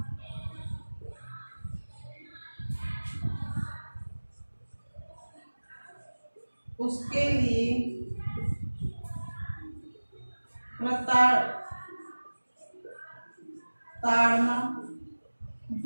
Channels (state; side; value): inverted; both; correlation -1.00